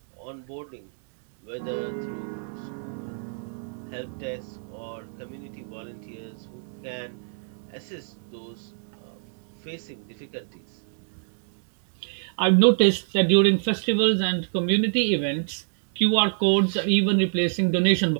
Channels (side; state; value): left; silent; digital silence